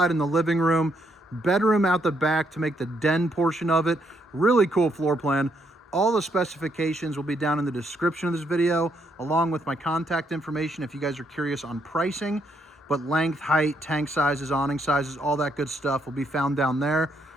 in the living room, bedroom out the back to make the den portion of it. Really cool floor plan. All the specifications will be down in the description of this video, along with my contact information if you guys are curious on pricing. But length, height, tank sizes, awning sizes, all that good stuff will be found down there.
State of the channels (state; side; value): normal; both; correlation 0.74